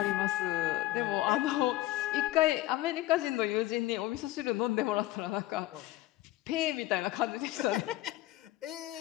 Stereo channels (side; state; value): right; quieter; 16.3 dB